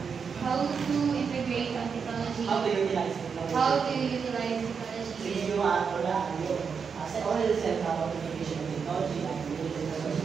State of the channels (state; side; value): quieter; left; 6.1 dB